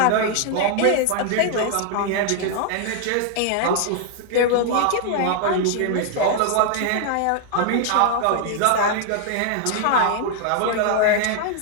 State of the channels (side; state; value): both; different; correlation 0.00